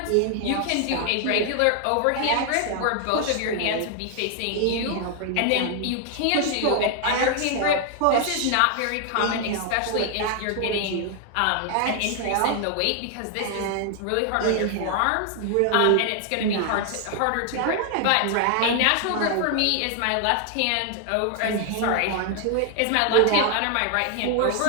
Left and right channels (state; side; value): different; both; correlation 0.00